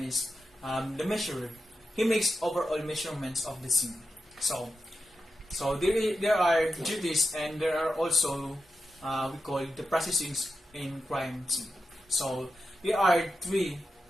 is the measurer. He makes overall measurements of the scene. So there are duties, and there are also we call the processings in crime scene. So there are three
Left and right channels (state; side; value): normal; both; correlation 0.90